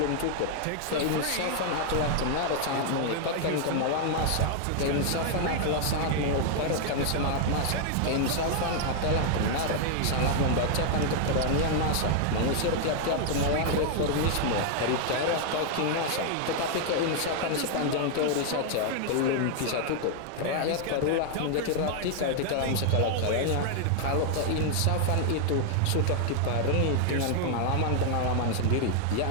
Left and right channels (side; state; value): both; different; correlation 0.00